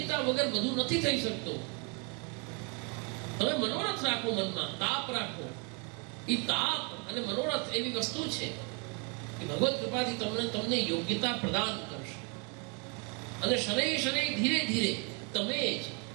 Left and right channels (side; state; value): left; quieter; 33.3 dB